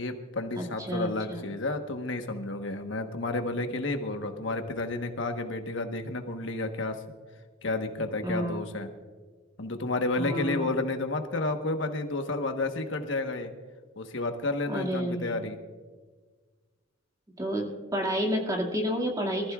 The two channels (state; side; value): normal; both; correlation 0.22